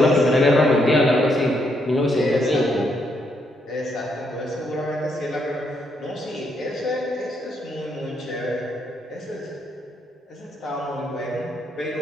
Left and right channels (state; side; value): normal; both; correlation 0.76